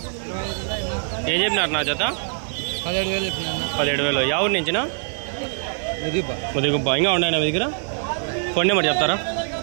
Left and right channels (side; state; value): left; silent; digital silence